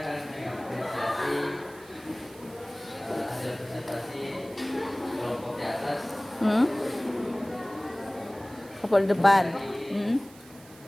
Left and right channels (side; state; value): right; noise; hiss, 22 dB below the sound